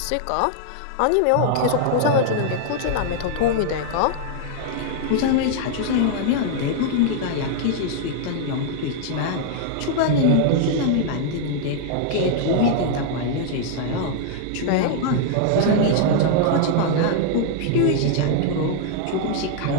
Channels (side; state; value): both; different; correlation 0.00